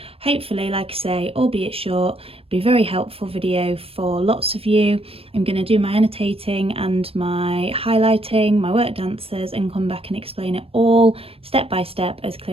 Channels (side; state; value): left; late; 0.28 ms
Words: hopefully, like I say, albeit short, be a very helpful video for lots of you. I'm going to do my annotating and my highlighting, my worked answers, and come back and explain it all step by step as